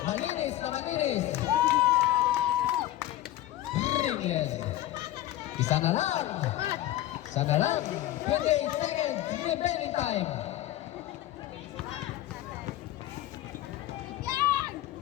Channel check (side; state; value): right; quieter; 14.5 dB